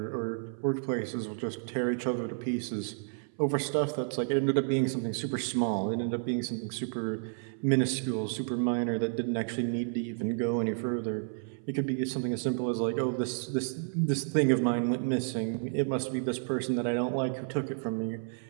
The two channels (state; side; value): silent; left; 57 dB below the other